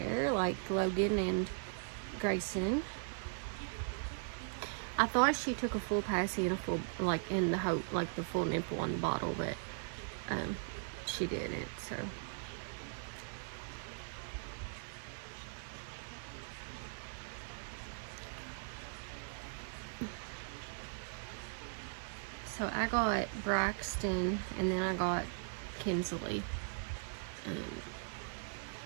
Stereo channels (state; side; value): silent; left; 52 dB below the other